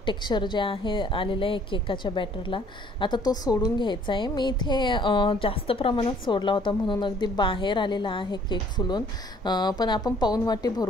टेक्स्चर जे आहे आलेलं आहे केकाच्या बॅटरला. आता तो सोडून घ्यायचा आहे. मी इथे जास्त प्रमाणात सोडला होता म्हणून अगदी बाहेर आलेला आहे केक फुलून, पण आपण पाऊण वाटी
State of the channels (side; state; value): both; normal; correlation 0.59